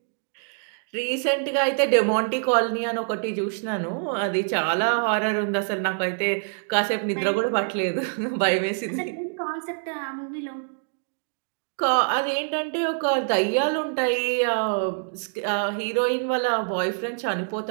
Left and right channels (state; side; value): silent; left; digital silence